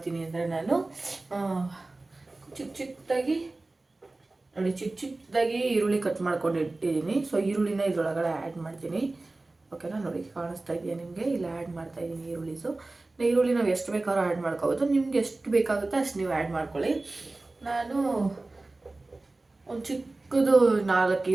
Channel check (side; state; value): left; quieter; 3.1 dB